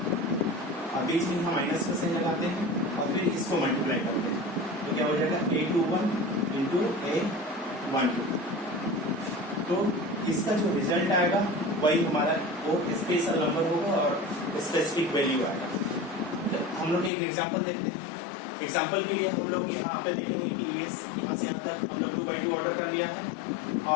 और बीच में हम माइनस का साइन लगाते हैं और फिर इसको मल्टीप्लाई करते हैं तो क्या हो जाएगा A21 इंटू A12। तो इसका जो रिजल्ट आएगा वही हमारा वो स्पेशल नंबर होगा और स्पेसिफिक वैल्यू आएगा। हम लोग एक एग्जांपल देखते हैं। एग्जांपल के लिए हम लोग यहाँ पे देखेंगे कि यहाँ से यहाँ तक हम लोग 2x2 ऑर्डर कर लिया है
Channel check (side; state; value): right; drops out; at 17.1 s